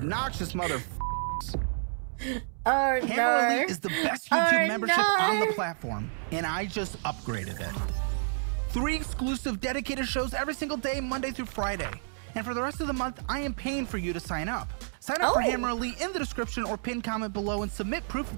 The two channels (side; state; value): left; silent; digital silence